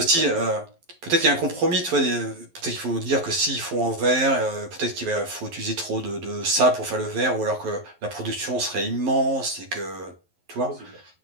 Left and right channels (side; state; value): left; late; 11 ms